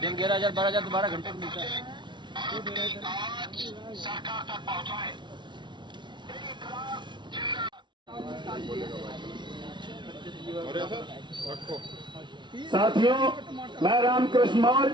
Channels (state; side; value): late; left; 0.23 ms